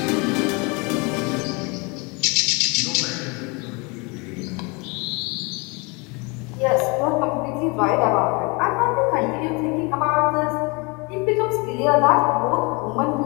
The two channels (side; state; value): right; quieter; 29.2 dB